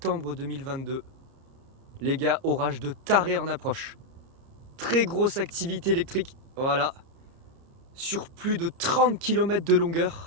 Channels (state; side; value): late; left; 30 ms